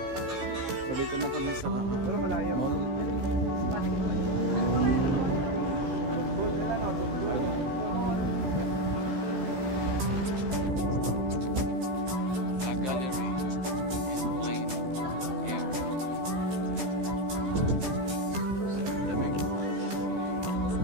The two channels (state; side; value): late; left; 15 ms